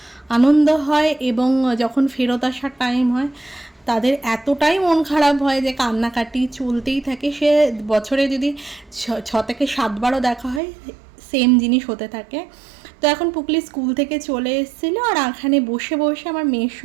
আনন্দ হয় এবং যখন ফেরত আসার টাইম হয় তাদের এতটাই মন খারাপ হয় যে কান্নাকাটি চলতেই থাকে। সে বছরে যদি 6 থেকে 7বারও দেখা হয় সেম জিনিস হতে থাকে। তো এখন পুকলি স্কুল থেকে চলে এসেছিলো আর এখানে বসে বসে আমার মেয়ের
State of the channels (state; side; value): drops out; left; at 10.6 s